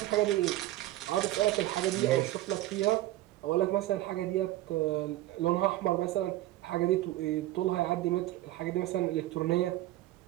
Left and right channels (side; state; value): left; quieter; 15.8 dB